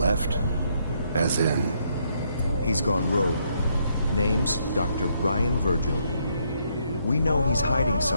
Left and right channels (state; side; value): inverted; both; correlation -0.74